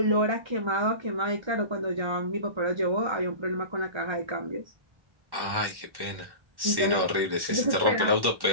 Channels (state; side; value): late; left; 1.1 ms